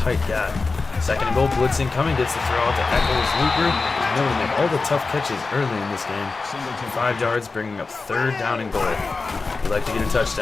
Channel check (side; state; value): right; quieter; 4.0 dB